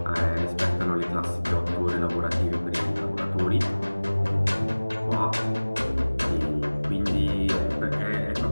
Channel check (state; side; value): inverted; both; correlation -1.00